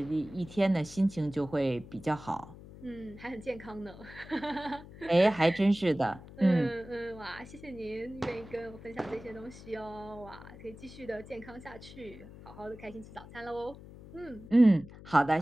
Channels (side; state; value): left; noise; hum, 17 dB below the sound